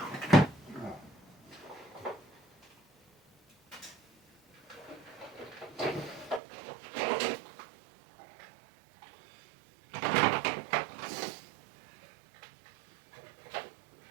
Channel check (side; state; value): left; drops out; at 6.4 s